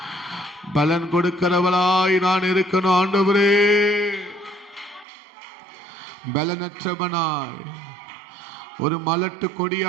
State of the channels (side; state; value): left; drops out; at 5.1 s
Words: பலன் கொடுக்கிறவளாய் நான் இருக்கணும் ஆண்டவரே. பலனற்றவனாய் ஒரு மலட்டு